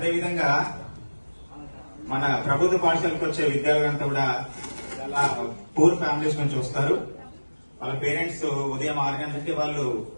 మన ప్రభుత్వ పాఠశాలకు వచ్చే విద్యార్థులంతా కూడా చాలా పూర్ ఫ్యామిలీస్ నుంచి వస్తారు. వాళ్ళ పేరెంట్స్ ఉదయం 6 గంటలకి వాళ్ళు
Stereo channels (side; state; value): both; inverted; correlation -1.00